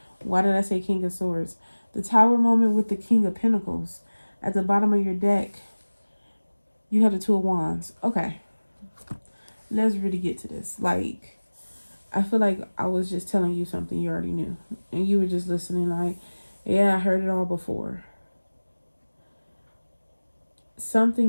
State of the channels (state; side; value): inverted; both; correlation -1.00